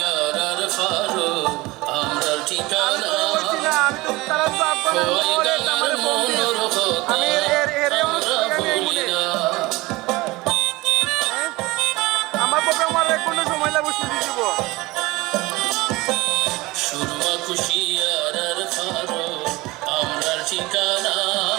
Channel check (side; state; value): left; quieter; 21.2 dB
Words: আর ফারো আমরা ঠিকানা আমি তো তারা তো আপনার আমি আমার প্রোগ্রাম আর কোনো সময় লাগবে শুধু দিব সুরমা খুশি আর ফারো আমরা ঠিকানা